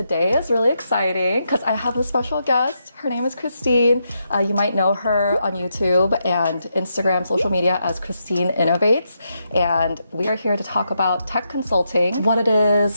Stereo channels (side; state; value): both; inverted; correlation -0.82